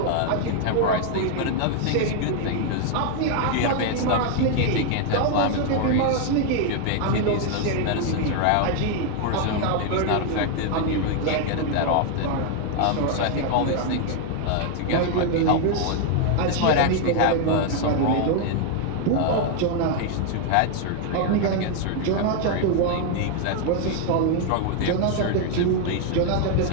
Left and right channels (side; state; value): both; different; correlation 0.00